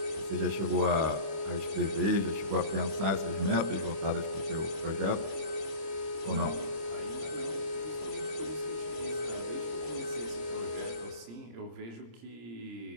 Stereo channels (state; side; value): late; left; 26 ms